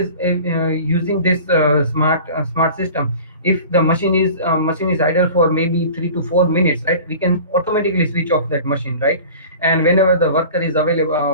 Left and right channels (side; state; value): both; inverted; correlation -0.41